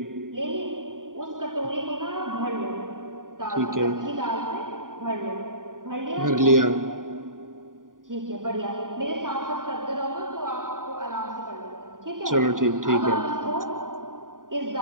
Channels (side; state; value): left; late; 0.89 ms